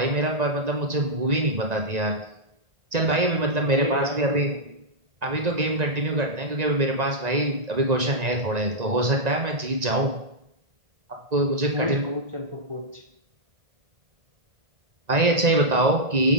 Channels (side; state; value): left; late; 1.9 ms